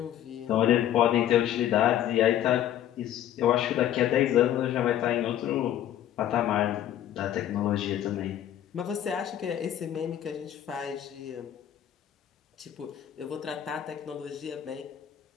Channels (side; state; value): right; quieter; 11.3 dB